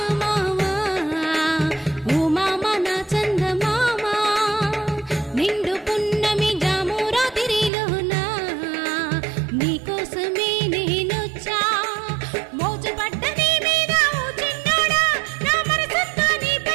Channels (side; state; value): left; drops out; at 7.7 s